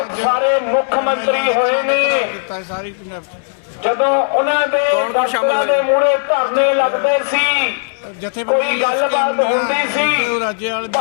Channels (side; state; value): right; silent; 66 dB below the other